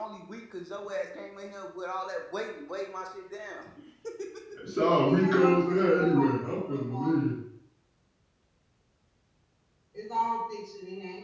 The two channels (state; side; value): identical; both; correlation 1.00